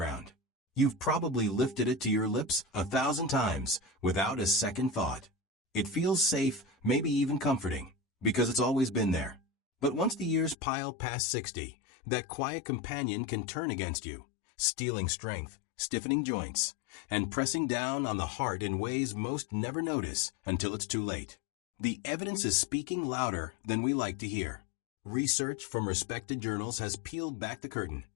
You've probably lifted it to your lips 1,000 times without a second thought. It feels safe, maybe even comforting, because it's always been there. But once the years pile past 60, that quiet companion can turn against you, stealing strength, stiffening joints, and pressing down on the heart in ways most never notice until it's too late. The evidence is speaking louder than we like to hear. Research from respected journals has peeled back the curtain,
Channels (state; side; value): drops out; right; at 10.6 s